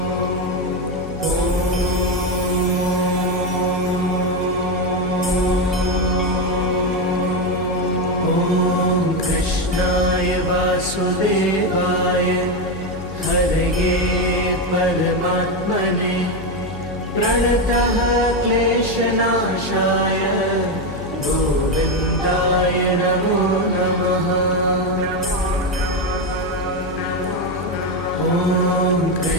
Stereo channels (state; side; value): noise; left; hum, 12 dB below the sound